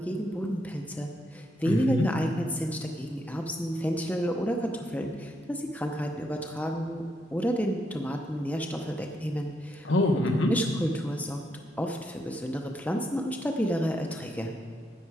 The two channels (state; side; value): normal; both; correlation 0.78